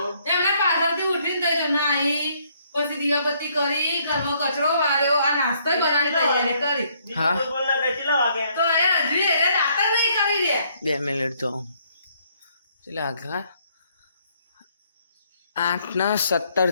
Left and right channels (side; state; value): both; inverted; correlation -0.68